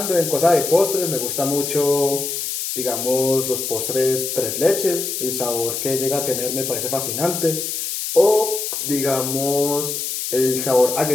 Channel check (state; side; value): noise; left; hiss, 3 dB below the sound